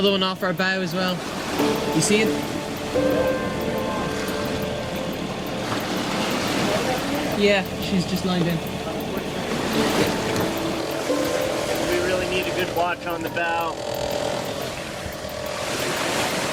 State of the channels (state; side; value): identical; both; correlation 1.00